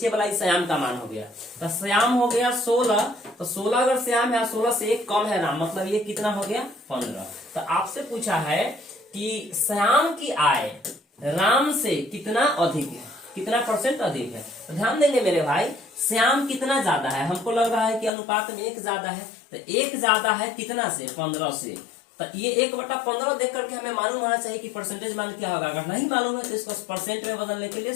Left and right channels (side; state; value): right; drops out; at 18.1 s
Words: वाला श्याम का मान हो गया। तो श्याम हो गया 16, तो 16 अगर श्याम है, 16 से 1 कम है राम, मतलब ये कितना हो गया 15। तो आपसे पूछा है कि श्याम की आय राम से कितना अधिक है, कितना परसेंट अधिक है। तो ध्यान देंगे मेरे भाई, श्याम कितना ज्यादा है, हमको लग रहा है कि अनुपात में 1 ज्यादा है, तो 1 ज्यादा है कितना से, 15 से। तो ये 1/15 देख करके हमें मालूम होना चाहिए कि परसेंटेज मान क्या होगा। अगर नहीं मालूम है तो इसको परसेंट में बदलने के लिए